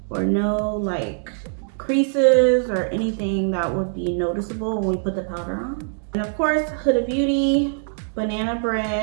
or no like creases or anything that would be noticeable when we put the powder on. And of course, Huda Beauty banana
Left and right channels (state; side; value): silent; left; digital silence